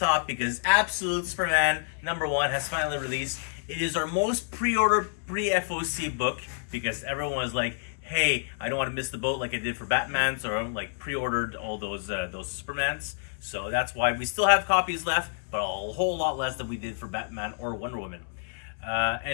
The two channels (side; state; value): right; silent; 59 dB below the other